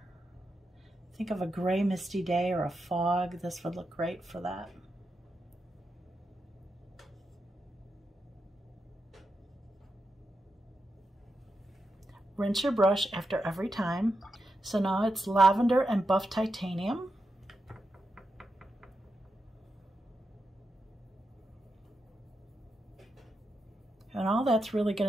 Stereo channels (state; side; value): normal; both; correlation 0.87